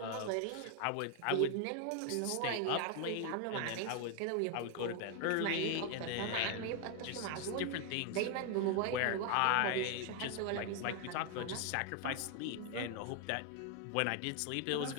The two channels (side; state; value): both; different; correlation 0.01